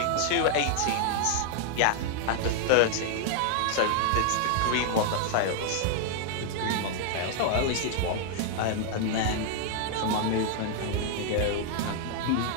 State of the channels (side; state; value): both; different; correlation 0.00